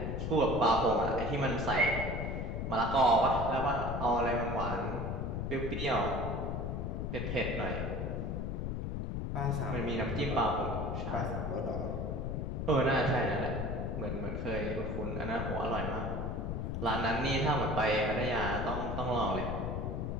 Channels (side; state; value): left; noise; rumble, 2 dB below the sound